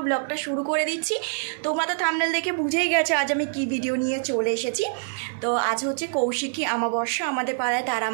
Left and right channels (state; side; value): silent; left; 58 dB below the other